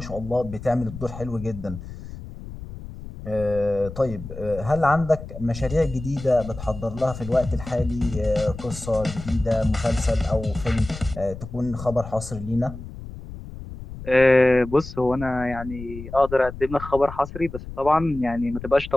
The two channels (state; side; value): noise; left; rumble, 12 dB below the sound